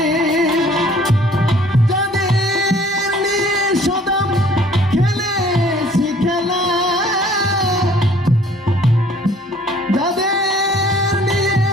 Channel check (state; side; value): normal; both; correlation 0.55